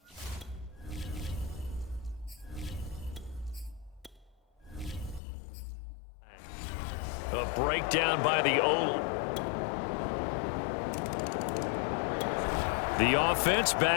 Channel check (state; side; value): drops out; right; at 5.2 s